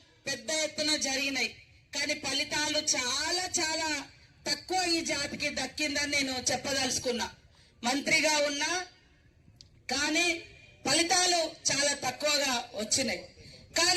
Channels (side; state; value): both; identical; correlation 1.00